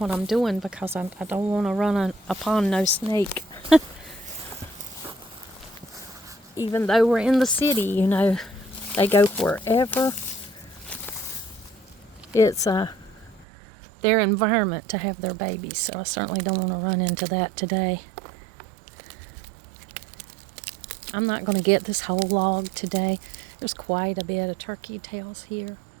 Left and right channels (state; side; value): drops out; left; at 13.5 s